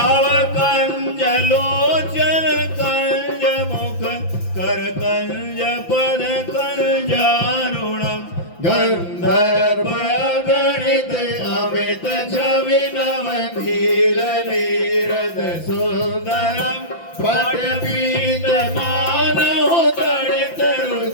कंज लोचन कंज मुख कर कंज पद कंजारुणम। गंधर्व गणित अमित छवि नव धीर नीरद सुंदरम। पट पीत मानव तड़ित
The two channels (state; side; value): late; right; 5.9 ms